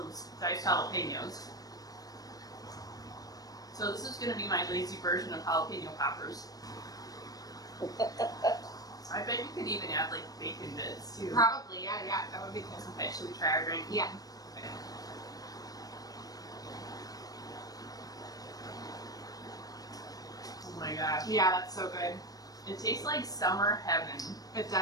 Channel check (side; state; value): right; late; 0.18 ms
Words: diced jalapenos. So this is going to be my lazy version of jalapeno poppers. I bet you could even add like bacon bits too. Probably, yeah, that would be good. Okay, should we try our drink? Yeah. Okay. Oh my gosh. Yeah, that's so good. It tastes like summer heaven. It